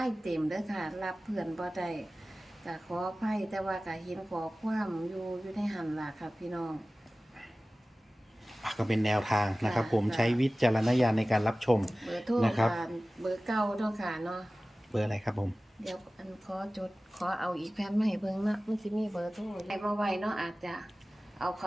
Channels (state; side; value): normal; both; correlation 0.97